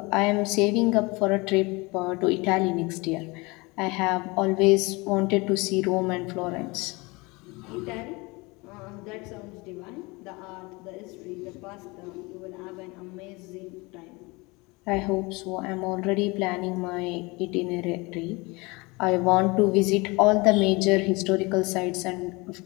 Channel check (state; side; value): quieter; right; 25.2 dB